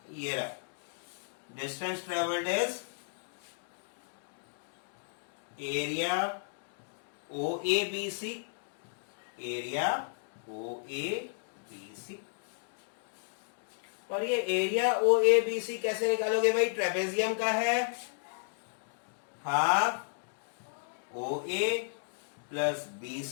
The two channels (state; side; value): silent; right; digital silence